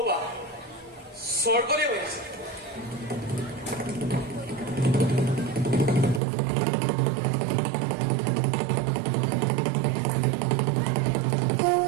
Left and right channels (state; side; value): drops out; left; at 6.2 s